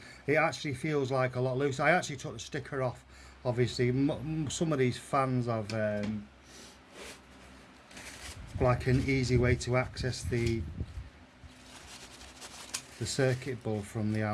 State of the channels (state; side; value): identical; both; correlation 1.00